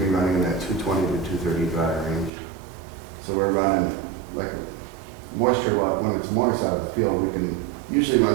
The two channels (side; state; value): left; drops out; at 2.3 s